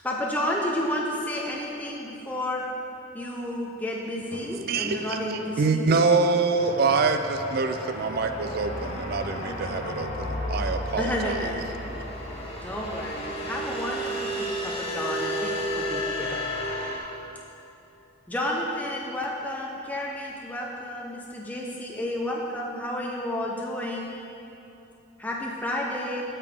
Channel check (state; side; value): normal; both; correlation 0.18